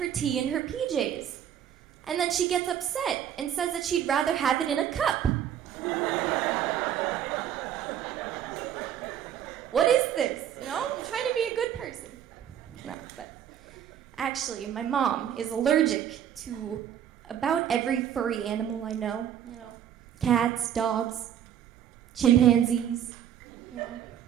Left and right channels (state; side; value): quieter; left; 9.8 dB